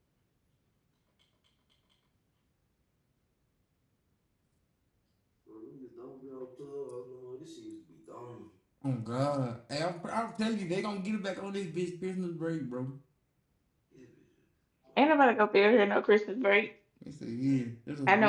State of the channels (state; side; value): identical; both; correlation 1.00